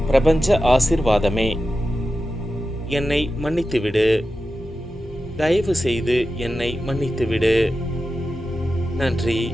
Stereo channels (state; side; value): normal; both; correlation 0.92